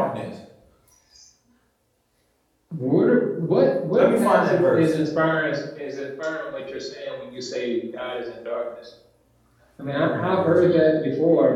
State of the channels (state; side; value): identical; both; correlation 1.00